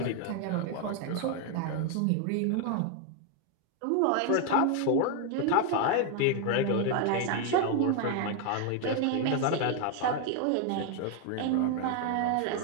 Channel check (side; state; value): both; different; correlation 0.01